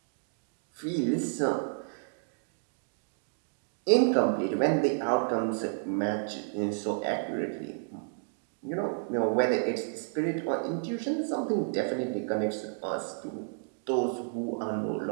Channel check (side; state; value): left; silent; digital silence